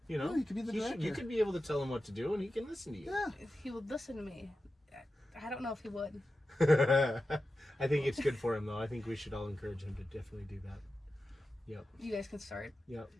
You know, you could be the director. You could be able to tell him what to do, and he can listen to you. Yeah. If he would listen to me. I don't know if he would. I think it's good for him, though. I think we should all encourage him to definitely do that. Yep. You guys can start. Yep.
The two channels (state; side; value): normal; both; correlation 0.92